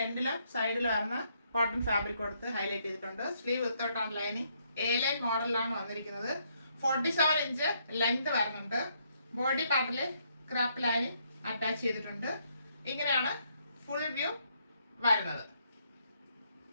എൻഡിലും സൈഡിലും വരുന്ന കോട്ടൺ ഫാബ്രിക് കൊടുത്ത് ഹൈലൈറ്റ് ചെയ്തിട്ടുണ്ട്. സ്ലീവ് വിത്തൗട്ടാണ് ലൈനിങ്. എ ലൈൻ മോഡലിലാണ് വന്നിരിക്കുന്നത്. 47 ഇഞ്ച് ലെങ്ത് വരുന്നുണ്ട്. ബോഡി പാർട്ടിൽ ക്രാപ്പ് ലൈനിങ് അറ്റാച്ച് ചെയ്തിട്ടുണ്ട്. ഇങ്ങനെയാണ് ഫുൾ വ്യൂ വരുന്നത്.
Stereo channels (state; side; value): inverted; both; correlation -0.72